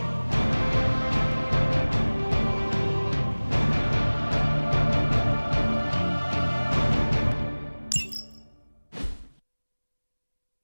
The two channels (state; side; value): inverted; both; correlation -1.00